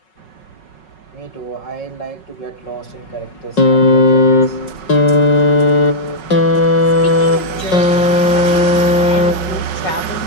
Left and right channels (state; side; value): late; right; 5.4 ms